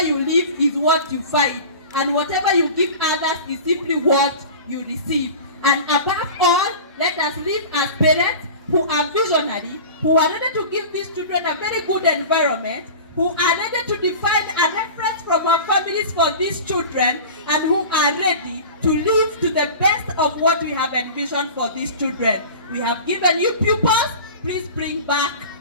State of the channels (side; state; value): both; inverted; correlation -0.36